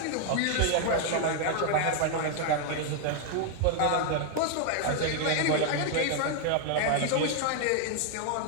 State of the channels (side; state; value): both; different; correlation 0.00